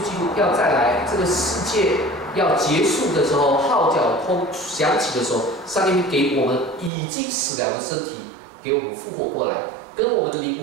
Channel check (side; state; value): left; drops out; at 6.9 s